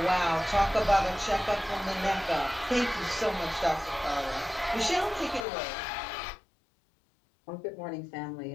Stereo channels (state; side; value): drops out; right; at 5.5 s